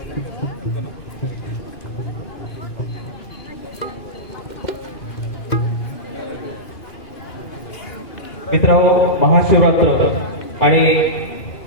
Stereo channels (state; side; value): late; right; 2.5 ms